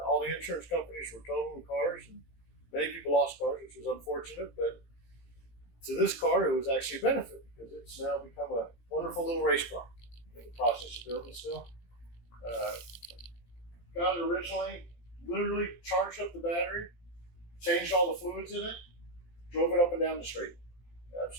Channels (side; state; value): right; late; 17 ms